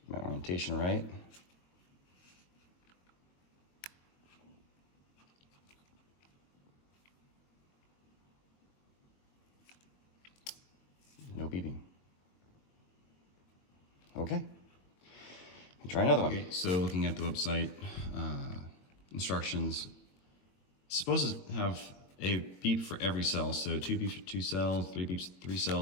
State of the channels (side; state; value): right; late; 22 ms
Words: My orientation right. No beeping. Try another one. Okay, so looking at the website instructions, it's supposed to have a beep for every cell. So 2 beeps for 2 cells, 3 beeps for 3